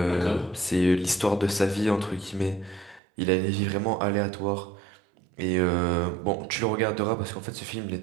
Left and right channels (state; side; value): drops out; left; at 3.0 s